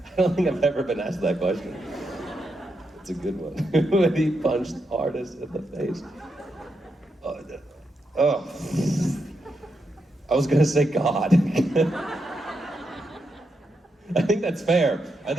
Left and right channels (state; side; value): normal; both; correlation 0.83